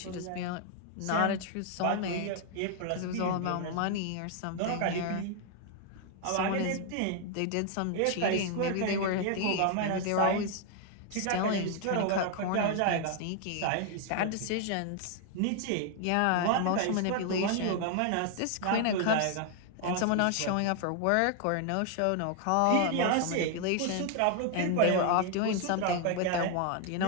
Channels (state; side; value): different; both; correlation 0.00